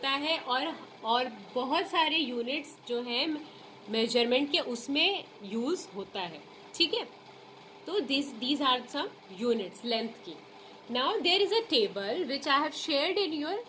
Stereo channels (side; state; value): both; identical; correlation 1.00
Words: है, और बहुत सारे यूनिट्स जो हैं मेजरमेंट के उसमें यूज होता है। ठीक है, तो these are some units length की. Now there is a table which I have shared